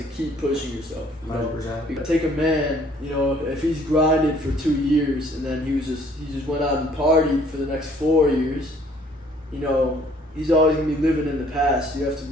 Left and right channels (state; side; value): normal; both; correlation 0.59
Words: keep pushing yourself. 100%. You know? Take a man, you know, if he's grinded for 2 years and then he just went out and partied for the next 4 years, you know, he's always gonna be living in the past. You have to